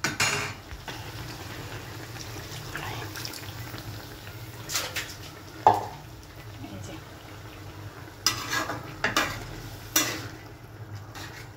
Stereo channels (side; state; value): both; identical; correlation 1.00